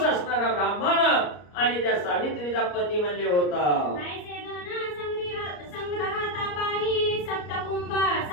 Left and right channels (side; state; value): right; late; 34 ms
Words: असणारा ब्राह्मण आणि त्या सावित्रीचा पती म्हणले होता. ऐसे धन संग्रहाता पाही, सप्तकुंभ